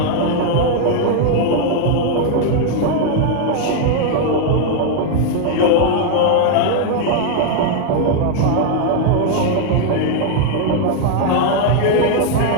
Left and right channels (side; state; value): both; different; correlation 0.00